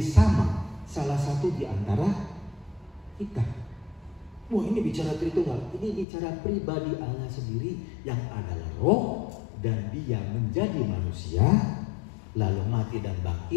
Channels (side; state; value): right; drops out; at 6.1 s